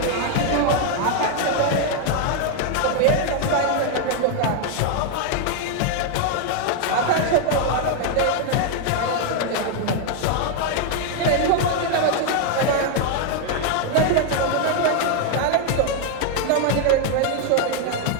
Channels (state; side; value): different; both; correlation 0.01